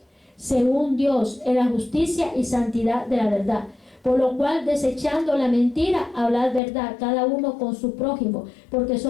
según Dios, en la justicia y santidad de la verdad. Por lo cual, desechando la mentira, hablad verdad, cada uno con su prójimo, porque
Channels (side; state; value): right; drops out; at 6.6 s